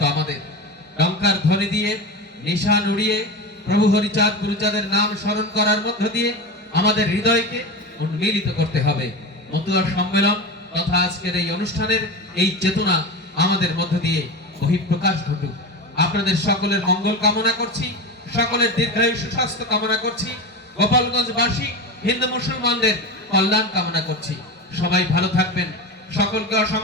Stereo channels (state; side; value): normal; both; correlation 0.23